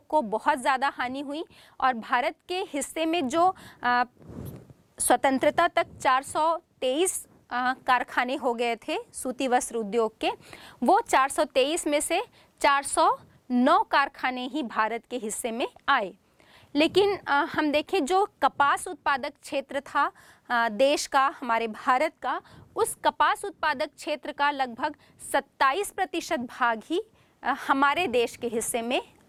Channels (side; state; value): both; identical; correlation 1.00